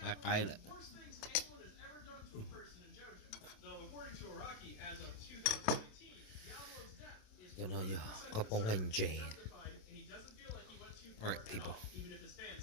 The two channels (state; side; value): late; right; 27 ms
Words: cái lại. Cho nó giờ khâu bông lên Jane. Alright, people.